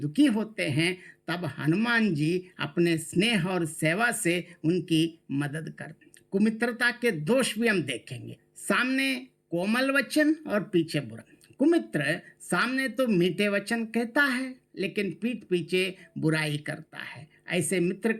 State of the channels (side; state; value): both; identical; correlation 1.00